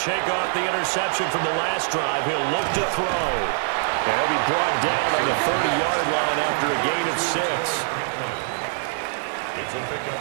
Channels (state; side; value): silent; left; digital silence